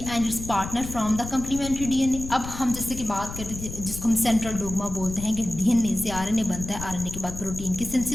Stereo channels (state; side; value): noise; left; rumble, 9 dB below the sound